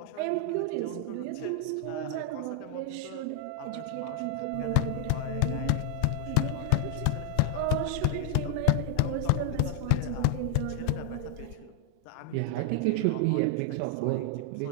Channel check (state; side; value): different; both; correlation 0.00